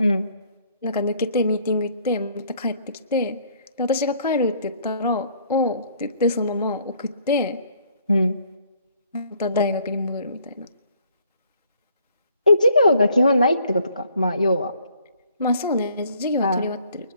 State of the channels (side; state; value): both; inverted; correlation -0.62